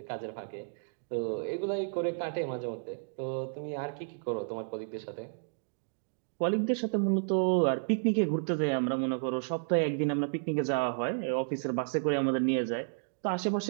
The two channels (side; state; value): left; silent; digital silence